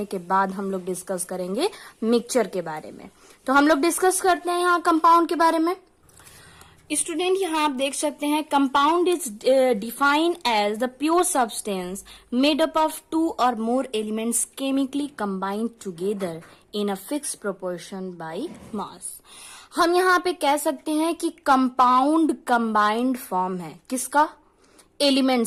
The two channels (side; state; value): both; identical; correlation 1.00